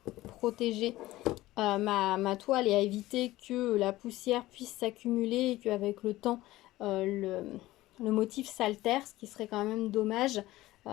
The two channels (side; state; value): right; quieter; 17.1 dB